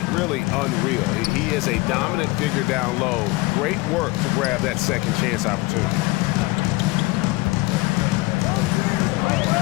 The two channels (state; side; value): quieter; right; 22.0 dB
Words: really unreal. He is a dominant figure down low. Great work to grab that second chance opportunity.